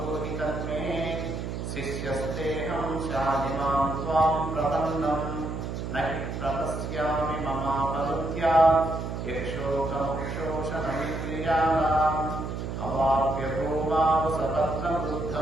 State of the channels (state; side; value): noise; right; hum, 5 dB below the sound